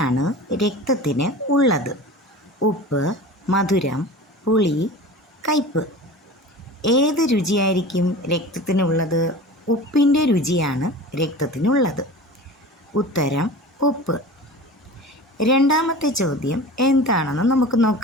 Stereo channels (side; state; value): both; normal; correlation 0.36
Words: രക്തത്തിന് ഉള്ളത്? ഉപ്പ്, മധുരം, പുളി, കയ്പ്പ്. ഏത് രുചിയായിരിക്കും രക്തത്തിനുള്ളത്? ഉപ്പിൻ്റെ രുചിയാണ് രക്തത്തിനുള്ളത്. ഉത്തരം ഉപ്പ്. രണ്ടാമത്തെ ചോദ്യം എന്താണെന്ന് നമുക്ക്